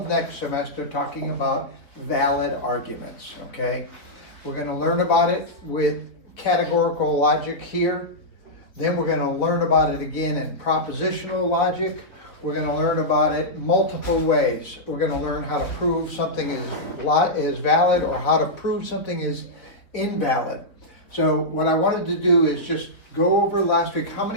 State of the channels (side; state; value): right; late; 3.9 ms